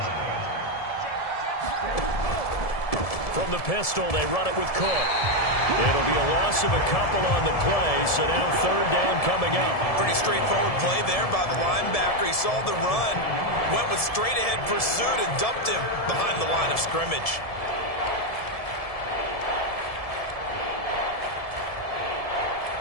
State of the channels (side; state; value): right; late; 1.7 ms